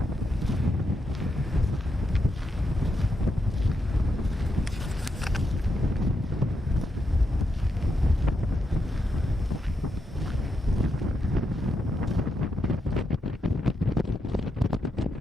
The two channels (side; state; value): both; normal; correlation 0.83